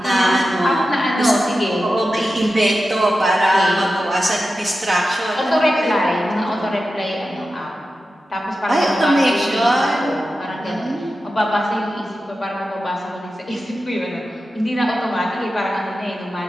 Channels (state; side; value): normal; both; correlation 0.92